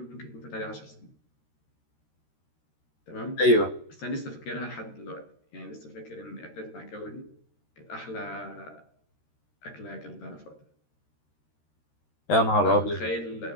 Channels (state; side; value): late; right; 13 ms